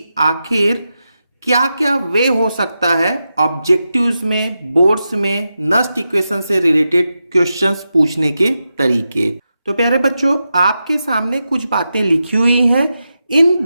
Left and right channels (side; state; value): both; inverted; correlation -0.89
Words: आखिर क्या क्या वे हो सकता है ऑब्जेक्टिव्स में, बोर्ड्स में नस्ट इक्वेशन से रिलेटेड क्वेश्चंस पूछने के तरीके। तो प्यारे बच्चों, आपके सामने कुछ बातें लिखी हुई हैं। इन